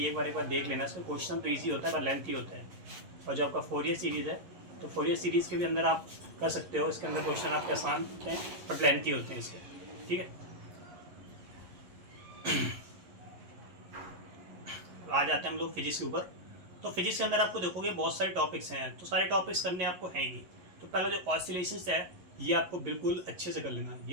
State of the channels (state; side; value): late; left; 11 ms